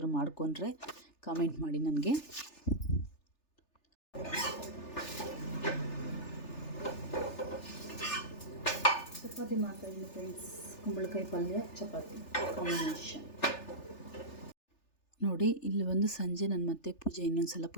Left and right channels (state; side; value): late; right; 3.4 ms